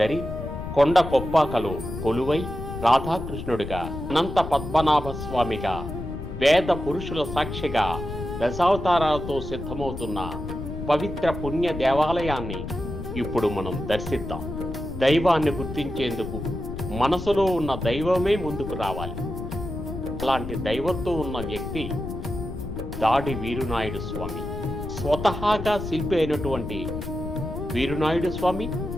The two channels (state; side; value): noise; left; rumble, 8 dB below the sound